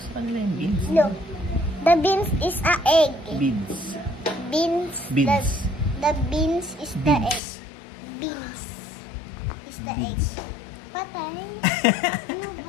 kanila yung beads. Look, the beans is a egg. Beads. Beans. Beans. The beans is the egg. Beads. Beans is the egg. Beads. Patay? Ano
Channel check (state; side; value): drops out; right; at 7.4 s